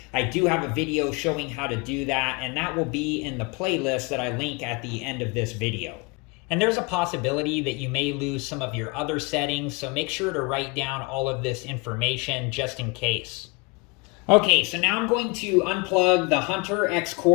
I do have a video showing how to do that, and that will be in the playlist that I link at the end of this video. And there's a possibility that you may lose some of your other settings, so make sure to write down all of this information just in case. Okay, so now I'm going to unplug the Hunter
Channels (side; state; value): right; quieter; 28.9 dB